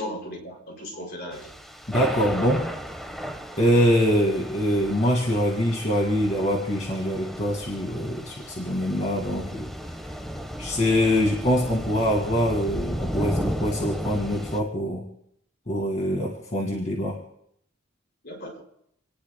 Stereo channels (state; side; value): normal; both; correlation 0.63